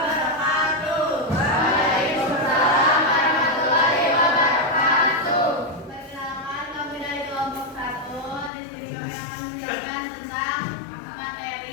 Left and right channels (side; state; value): right; drops out; at 8.5 s